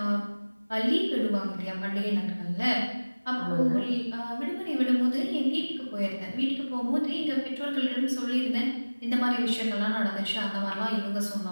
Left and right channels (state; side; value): inverted; both; correlation -1.00